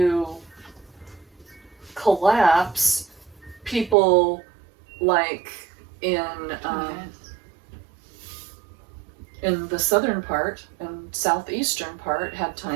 collapse, people like in the southern part and southeastern part had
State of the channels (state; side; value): drops out; left; at 4.0 s